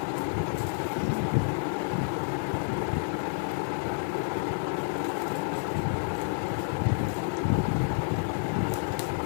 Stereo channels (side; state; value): right; silent; digital silence